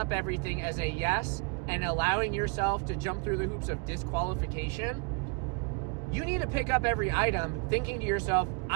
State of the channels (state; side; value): quieter; left; 33.4 dB